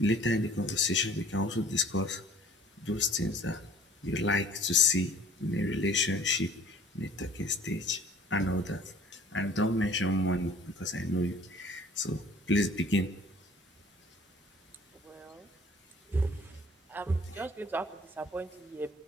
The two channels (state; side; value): normal; both; correlation 0.51